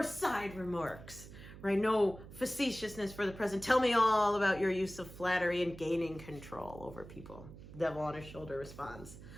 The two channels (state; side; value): noise; right; hum, 15 dB below the sound